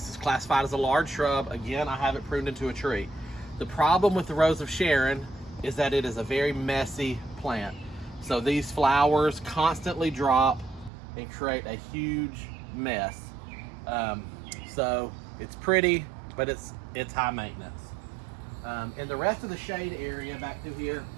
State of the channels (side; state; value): left; drops out; at 10.9 s